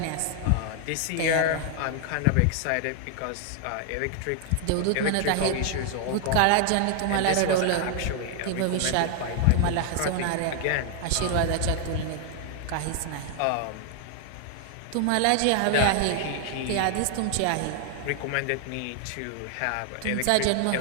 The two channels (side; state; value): both; different; correlation 0.00